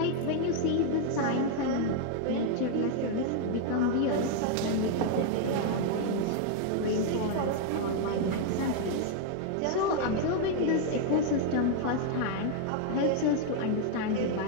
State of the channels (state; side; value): different; both; correlation 0.00